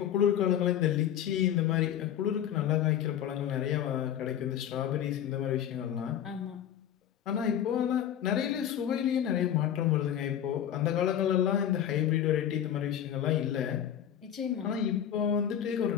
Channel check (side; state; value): right; quieter; 10.1 dB